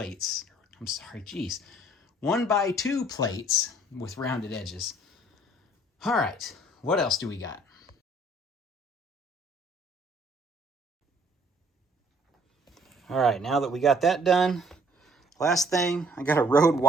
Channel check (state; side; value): normal; both; correlation 0.59